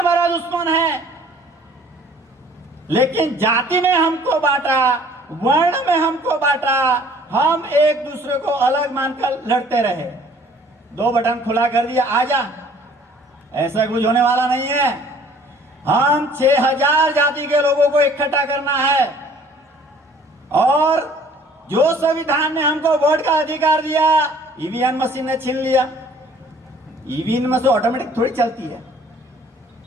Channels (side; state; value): both; normal; correlation 0.55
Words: दुश्मन है. लेकिन जाति में हमको बांटा, वर्ण में हमको बांटा, हम एक दूसरे को अलग मानकर लड़ते रहे। 2 बटन खुला कर दिया, आजा, ऐसा कुछ होने वाला नहीं है। हम 6000 जाति के लोगों को इकट्ठा करना है और जो संविधान ने हमको वोट का अधिकार दिया, ईवीएम मशीन ने छीन लिया। ईवीएम मशीन ऑटोमेटिक थोड़ी चलती है।